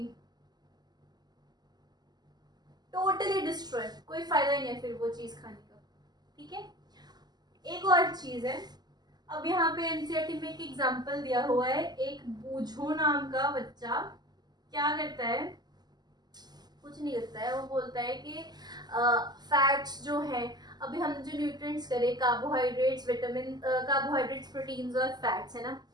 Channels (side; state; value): left; late; 0.20 ms